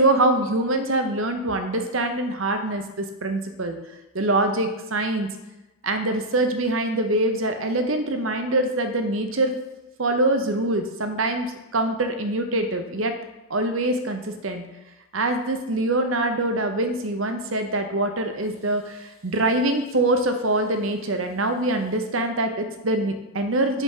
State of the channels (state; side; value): normal; both; correlation -0.05